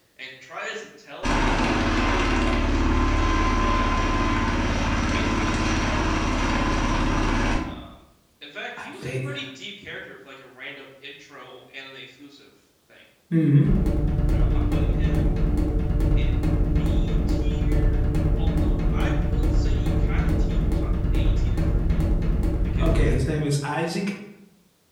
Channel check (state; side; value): identical; both; correlation 1.00